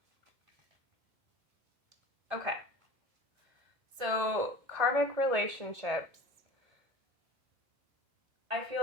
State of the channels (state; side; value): late; left; 1.7 ms